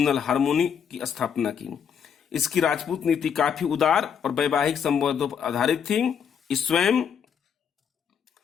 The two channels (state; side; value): quieter; right; 7.5 dB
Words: हार्मोनी की स्थापना की। इसकी राजपूत नीति काफी उदार और वैवाहिक संबंधों पर आधारित थी। स्वयं